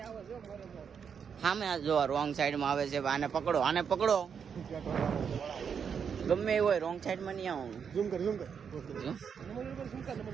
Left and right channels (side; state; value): left; quieter; 6.9 dB